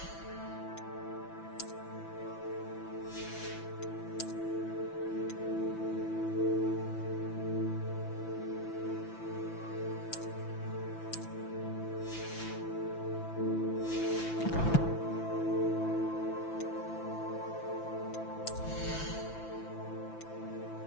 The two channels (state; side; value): late; right; 5.9 ms